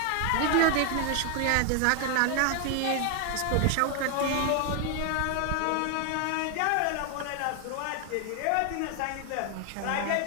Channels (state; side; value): different; both; correlation 0.00